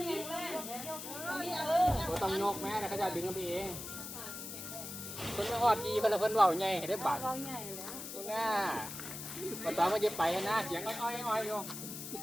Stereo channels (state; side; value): noise; left; hiss, 8 dB below the sound